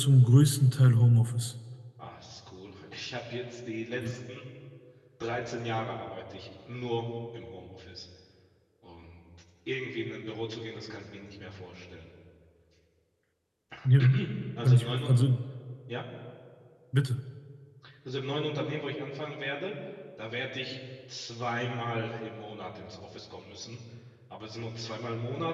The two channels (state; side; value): identical; both; correlation 1.00